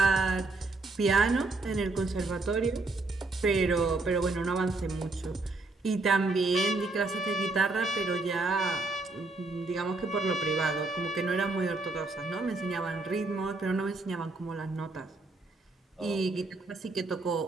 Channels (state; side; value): quieter; left; 3.3 dB